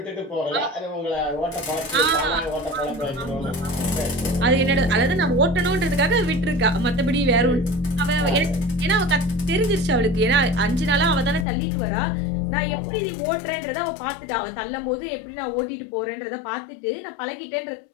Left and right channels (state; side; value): drops out; right; at 11.5 s